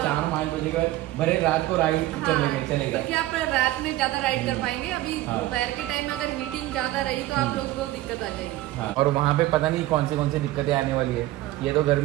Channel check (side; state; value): left; quieter; 16.2 dB